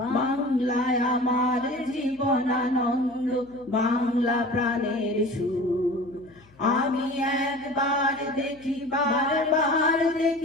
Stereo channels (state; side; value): noise; left; hum, 28 dB below the sound